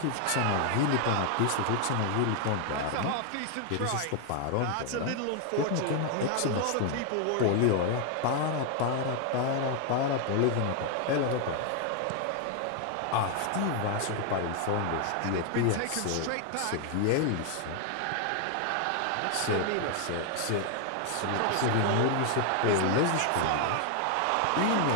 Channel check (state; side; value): different; both; correlation 0.00